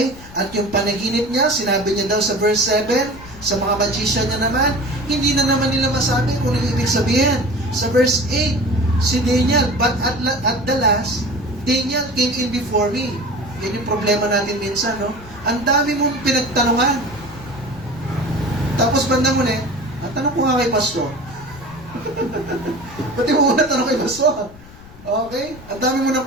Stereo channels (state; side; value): noise; left; rumble, 19 dB below the sound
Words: At yung panaginip niya, sinabi niya daw sa verse 7, sa mga magician niya naman, hindi na naman nila masabi kung ano ibig sabihin. Sa verse 8, si Daniel, but at the last, Daniel came in before me. Yan yung problema natin minsan, no? Ang dami mong pinagtanungan. Tapos bandang muli, ang tanong ko nga kay pastor, pati mo muna tanong kay pastor. Okay? Ang dami mo nang